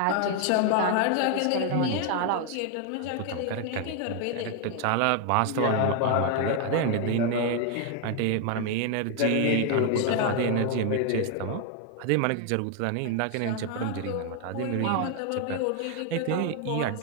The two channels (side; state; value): both; different; correlation 0.00